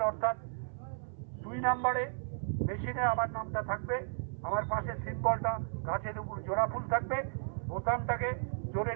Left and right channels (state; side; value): silent; left; 55 dB below the other